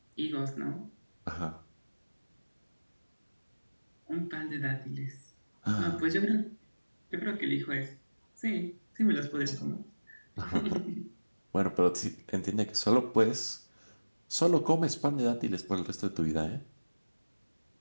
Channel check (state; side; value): inverted; both; correlation -1.00